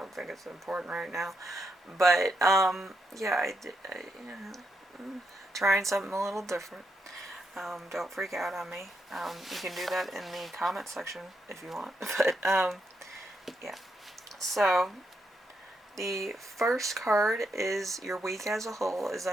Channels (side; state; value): both; normal; correlation 0.80